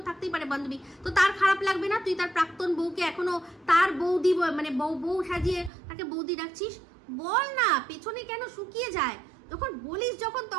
থাকতেই পারে বান্ধবী। তো তার খারাপ লাগবে না তুই তার প্রাক্তন বউকে এখনো তার বৌদি মানে বউ সাজিয়ে তাকে বৌদি ডাকছিস? বল না, পেছনে কেন শুকিয়ে যায়? যখন বলিস যখন,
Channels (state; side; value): drops out; left; at 5.7 s